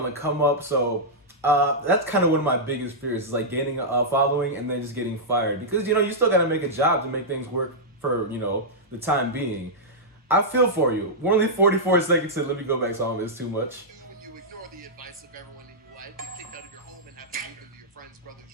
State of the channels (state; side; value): normal; both; correlation -0.09